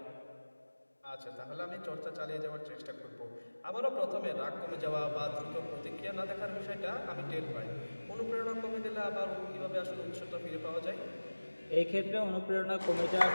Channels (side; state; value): both; inverted; correlation -1.00